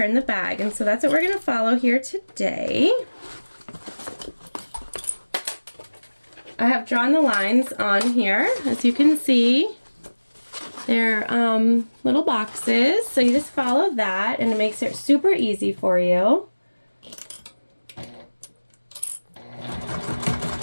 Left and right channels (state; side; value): inverted; both; correlation -1.00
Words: the bag. And so that's what we're going to follow here today. I have drawn the lines on here, as you can see. They're little boxes, so you just follow that and it makes it super easy for you.